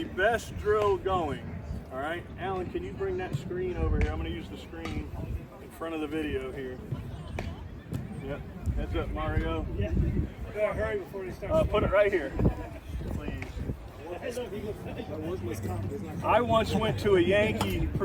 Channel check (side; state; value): both; identical; correlation 1.00